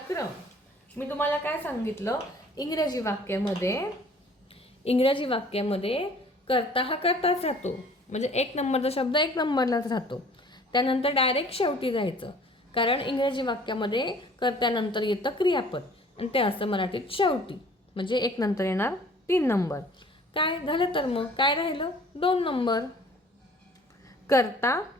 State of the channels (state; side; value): normal; both; correlation 0.52